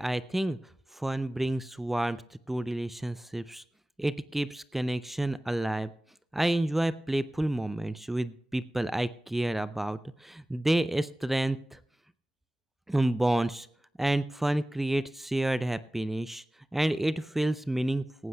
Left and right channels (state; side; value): normal; both; correlation 0.97